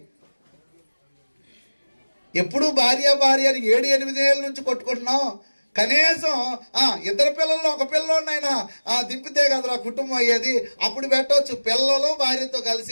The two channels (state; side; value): inverted; both; correlation -1.00